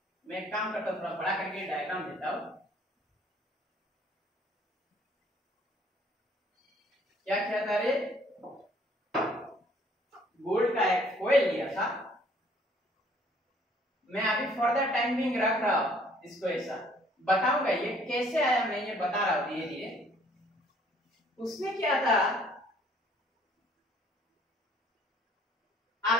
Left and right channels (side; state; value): both; normal; correlation 0.60